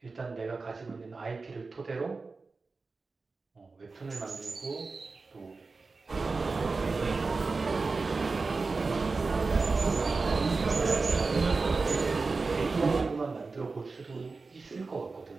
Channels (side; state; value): left; quieter; 4.0 dB